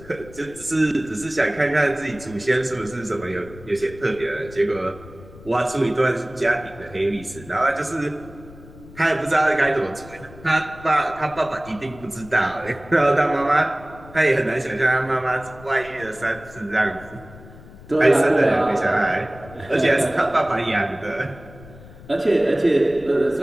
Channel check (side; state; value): left; noise; rumble, 19 dB below the sound